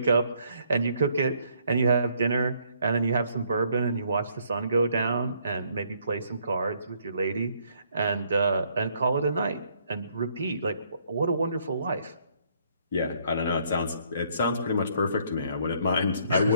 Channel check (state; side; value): inverted; both; correlation -0.67